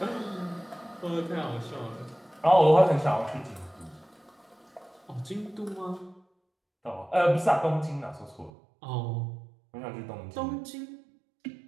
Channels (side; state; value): left; drops out; at 8.5 s